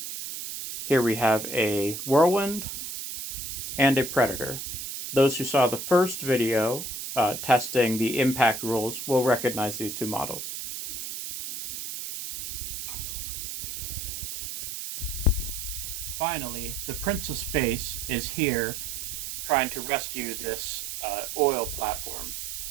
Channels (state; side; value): noise; right; hiss, 6 dB below the sound